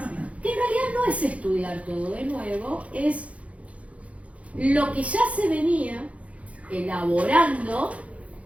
Que en realidad no es estudiar todo de nuevo, es lo que ya se venía elaborando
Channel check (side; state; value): left; late; 0.065 ms